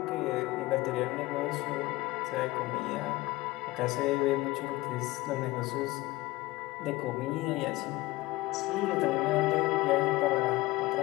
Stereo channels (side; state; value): right; quieter; 19.5 dB